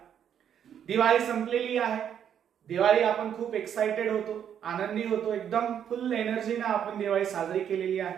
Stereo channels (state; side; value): quieter; left; 9.0 dB